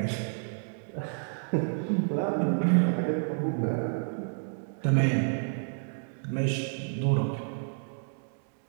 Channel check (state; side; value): silent; left; 58 dB below the other